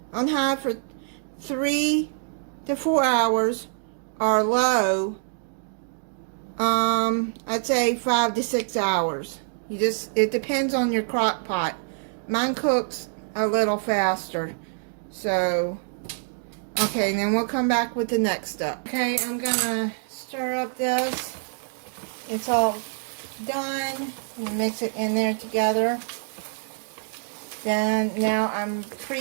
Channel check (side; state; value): left; silent; digital silence